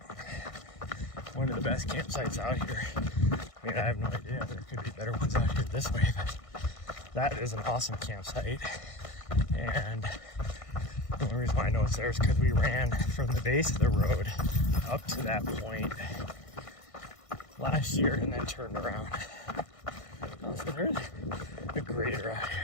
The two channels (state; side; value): late; right; 1.6 ms